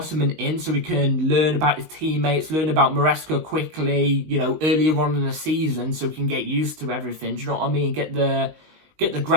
in so we can learn about his teammates, learn about Maresca quickly, you know, earlier on in the season so we can get used to everything. Do you know what I mean? Get the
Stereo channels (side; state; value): left; late; 19 ms